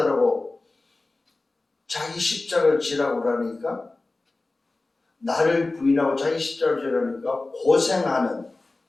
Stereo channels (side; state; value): right; quieter; 3.2 dB